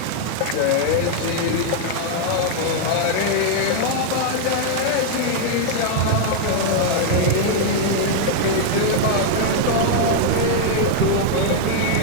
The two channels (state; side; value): different; both; correlation -0.01